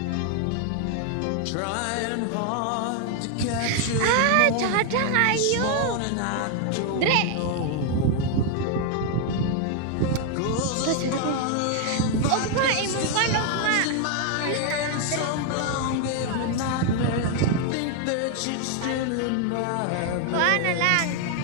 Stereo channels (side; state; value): both; different; correlation 0.00